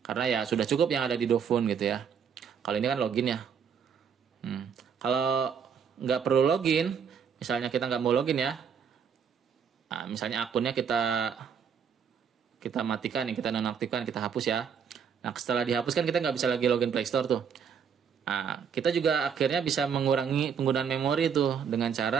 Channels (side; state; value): left; quieter; 7.1 dB